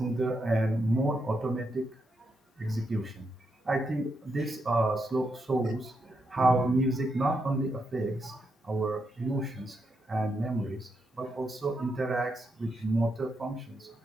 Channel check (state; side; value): normal; both; correlation 0.82